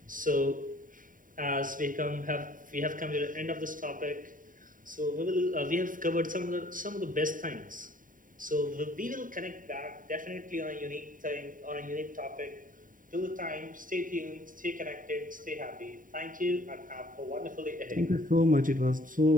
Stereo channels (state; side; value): late; left; 0.39 ms